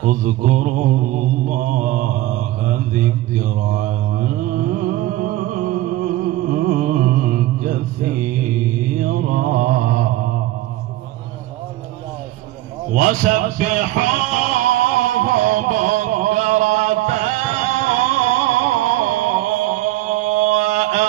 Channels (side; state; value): left; quieter; 16.0 dB